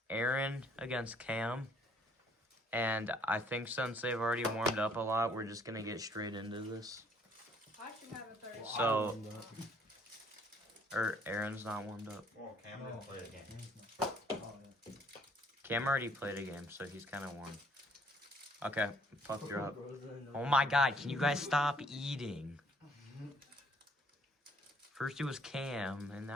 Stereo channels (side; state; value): both; normal; correlation 0.63